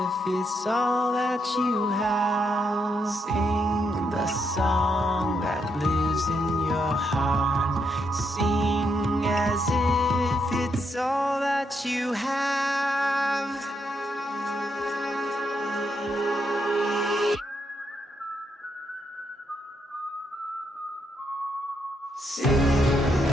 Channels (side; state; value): both; normal; correlation 0.78